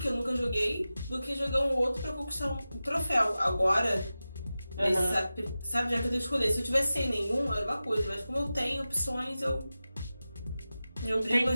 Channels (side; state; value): both; inverted; correlation -0.94